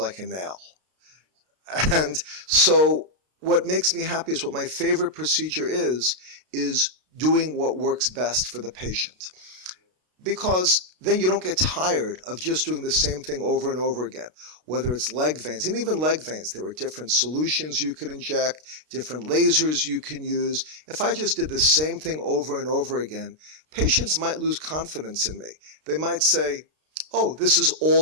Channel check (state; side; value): late; left; 32 ms